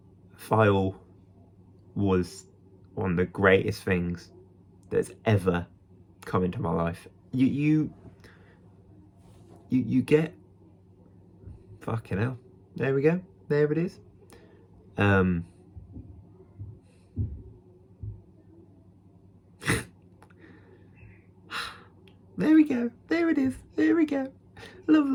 File was one of the greatest things that's ever come into my life. You get, fucking hell. There we go. There it is. There we go. There it is. There we go.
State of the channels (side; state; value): both; identical; correlation 1.00